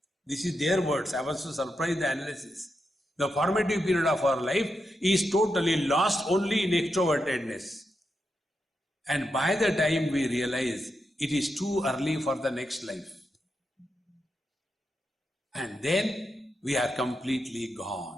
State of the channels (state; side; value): normal; both; correlation 0.86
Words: This is their words. I was so surprised the analysis. The formative period of our life is totally lost only in extrovertedness. And by the time we realize it is too early for the next life. And then we are completely